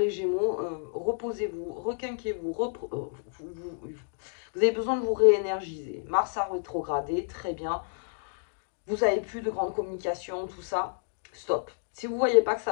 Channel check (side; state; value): right; silent; digital silence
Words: Gémeaux, reposez-vous, requinquez-vous. Vous avez besoin de vous réénergiser. Mars a rétrogradé, très bien. Vous n'avez plus de grande communication, tout ça. Stop. Si vous ne voyez pas que ça